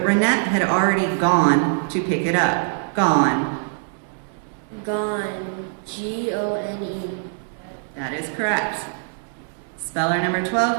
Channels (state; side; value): silent; left; 64 dB below the other